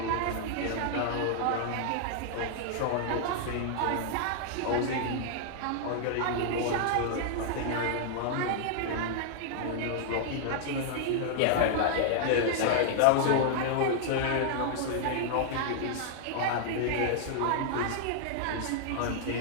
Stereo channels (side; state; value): both; different; correlation -0.01